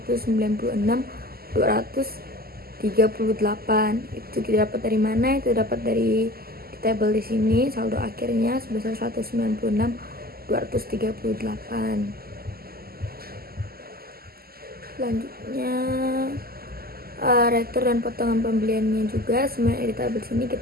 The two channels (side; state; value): left; late; 0.44 ms